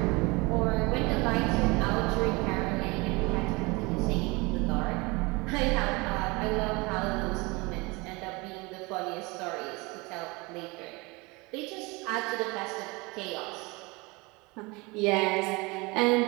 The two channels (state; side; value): quieter; left; 25.5 dB